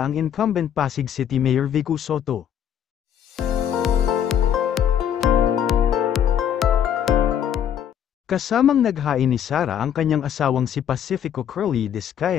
ang incumbent Pasig City Mayor Vico Sotto. Kasamang naghain ni Sara ang kanyang asawang si Pacifico Curly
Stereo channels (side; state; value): right; quieter; 9.3 dB